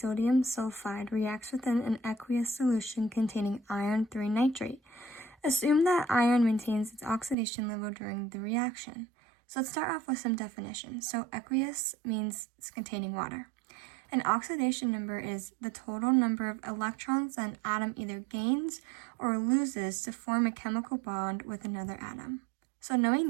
sulfide reacts within an aqueous solution containing iron 3 nitrate. Assume that iron maintains its oxidation level during the reaction. So let's start off with some definitions. So aqueous means it's containing water. An oxidation number is the total number of electrons that an atom either gains or loses to form a chemical bond with another atom. So knowing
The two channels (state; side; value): drops out; left; at 7.4 s